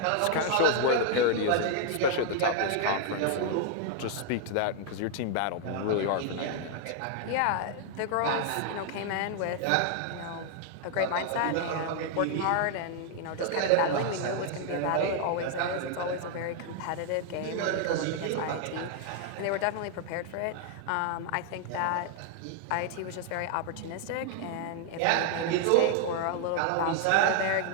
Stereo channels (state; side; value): different; both; correlation 0.00